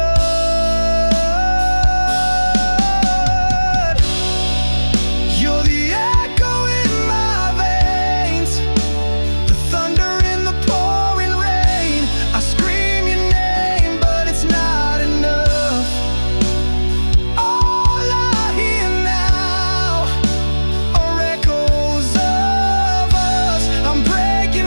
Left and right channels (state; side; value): inverted; both; correlation -1.00